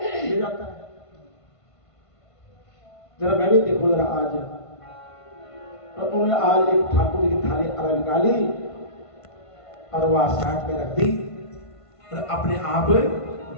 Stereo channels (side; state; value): right; late; 1.5 ms